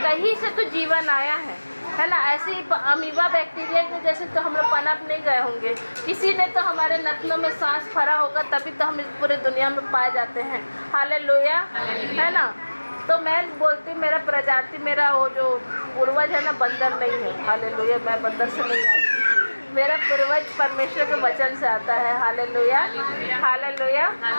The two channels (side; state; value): both; inverted; correlation -1.00